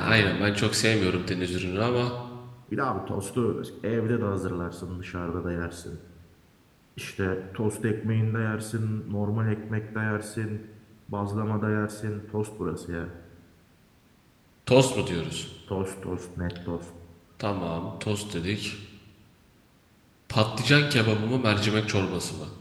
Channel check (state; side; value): identical; both; correlation 1.00